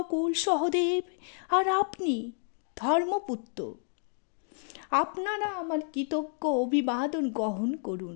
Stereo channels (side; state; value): right; silent; 57 dB below the other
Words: সহদেব, আর আপনি ধর্মপুত্র, আপনারা আমার কৃতজ্ঞ অভিবাদন গ্রহণ